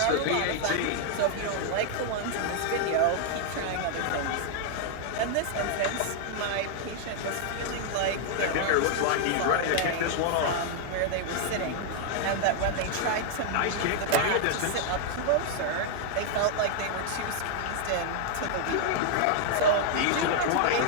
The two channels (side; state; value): both; different; correlation 0.00